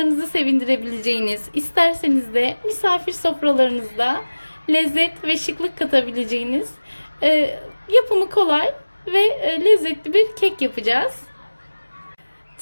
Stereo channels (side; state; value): both; inverted; correlation -1.00